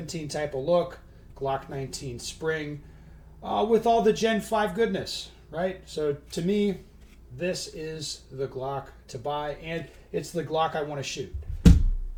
type of look, Glock 19 spring, with all the Gen 5 goodness, right? So to me, this is the Glock to buy, and it's the Glock I want to shoot.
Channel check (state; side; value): identical; both; correlation 1.00